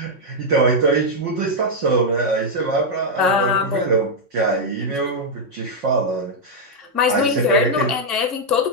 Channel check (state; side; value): late; left; 3.6 ms